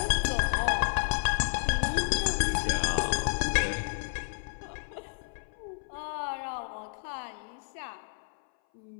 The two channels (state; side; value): silent; right; 57 dB below the other